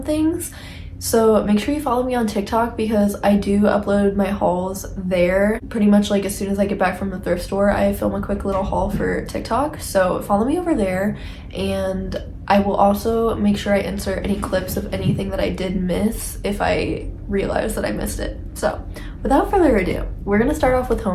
So make sure you follow me on TikTok because I do upload my hauls there. Pretty much like as soon as I get back from the thrift store, I film a quick little haul for TikTok. So follow me over there, and I will also make sure I insert any clips of anything that I did miss if I realize that I missed it. So without further ado, we're gonna start off with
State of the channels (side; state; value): both; identical; correlation 1.00